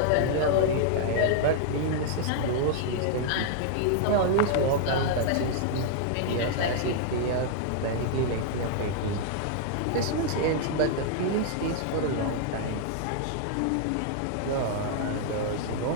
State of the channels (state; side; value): different; both; correlation -0.01